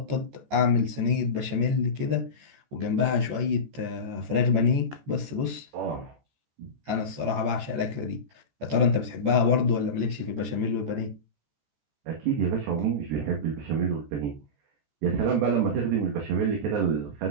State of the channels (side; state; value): left; late; 14 ms